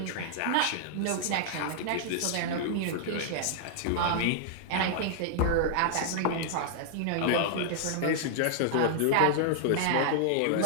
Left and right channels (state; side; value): different; both; correlation -0.01